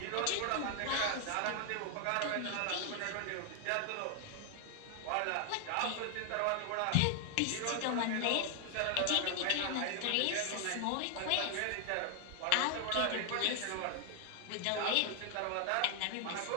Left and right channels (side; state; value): both; different; correlation 0.00